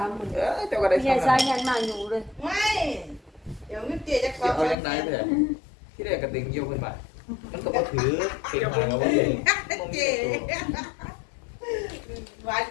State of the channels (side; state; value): right; drops out; at 4.8 s